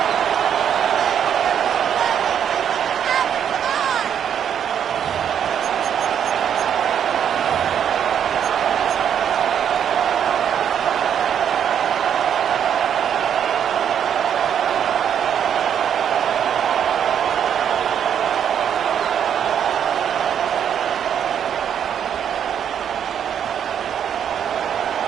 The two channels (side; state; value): left; quieter; 8.8 dB